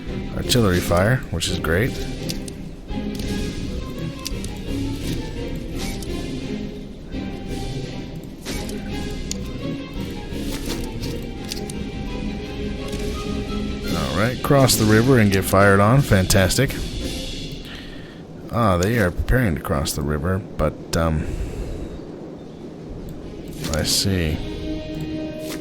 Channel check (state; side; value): identical; both; correlation 1.00